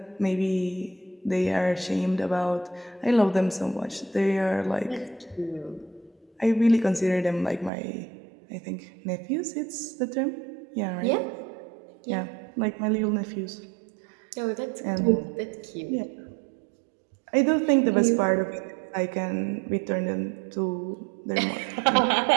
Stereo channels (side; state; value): left; drops out; at 7.7 s